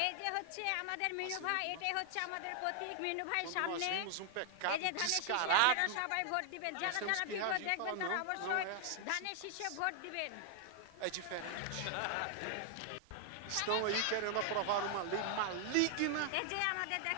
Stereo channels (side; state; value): both; different; correlation 0.00